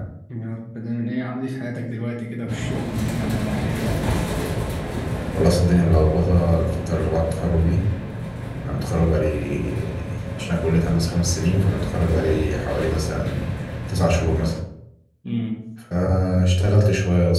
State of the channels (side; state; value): both; identical; correlation 1.00